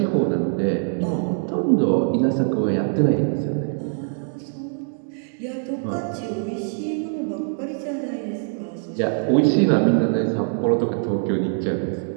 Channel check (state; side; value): silent; left; 63 dB below the other